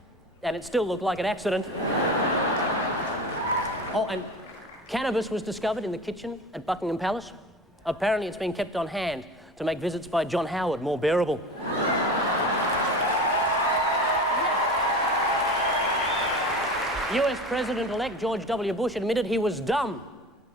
and it still looked like an accident. Oh, and cannabis was discovered in the kitchen at Buckingham Palace. Apparently it's been kept on hand to make visits by John Howard more bearable. US President-elect George W. Bush admitted he was dumb.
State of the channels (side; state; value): both; normal; correlation 0.32